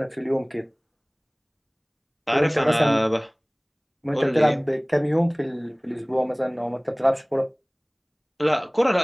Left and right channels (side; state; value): both; identical; correlation 1.00